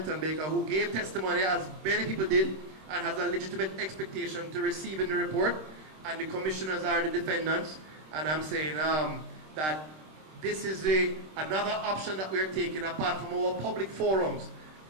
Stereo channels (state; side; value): late; left; 26 ms